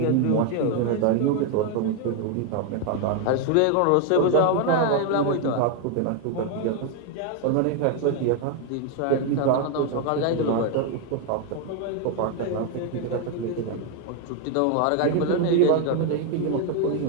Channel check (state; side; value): different; both; correlation 0.01